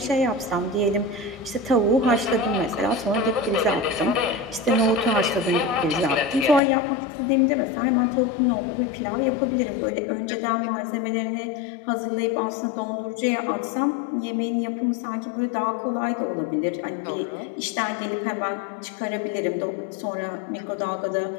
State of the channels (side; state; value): right; drops out; at 6.6 s